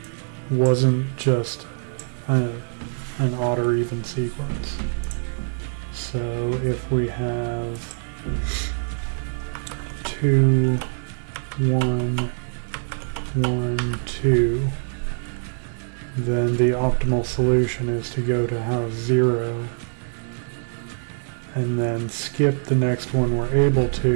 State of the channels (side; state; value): left; silent; 63 dB below the other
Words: wasn't just an odd or even sequence? So if we have 2, 1, 1, 2, then the optimal solution is to go to house 0 and then skip the next one we're able